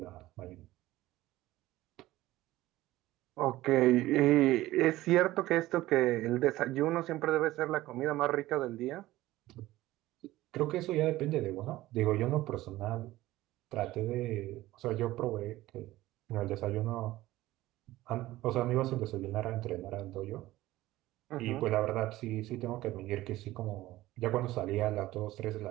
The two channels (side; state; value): left; quieter; 16.7 dB